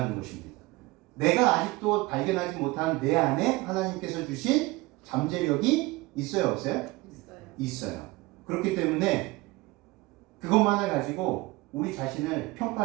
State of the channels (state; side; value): quieter; left; 21.6 dB